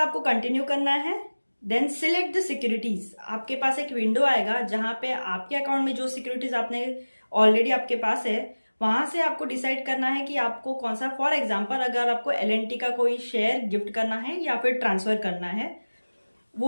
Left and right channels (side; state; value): both; inverted; correlation -1.00